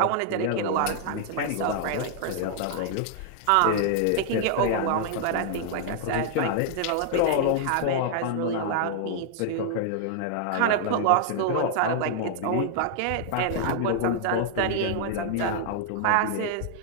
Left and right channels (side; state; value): both; different; correlation -0.01